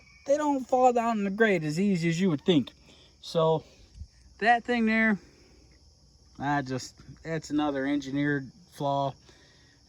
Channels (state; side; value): identical; both; correlation 1.00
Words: don't fall down in the grate as easy as you would think. So that thing there, it's another engineered flaw.